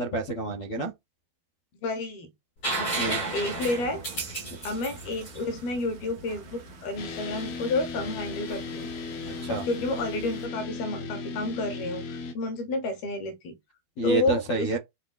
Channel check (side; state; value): right; late; 12 ms